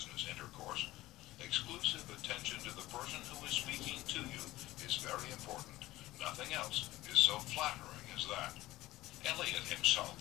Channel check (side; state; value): right; quieter; 17.2 dB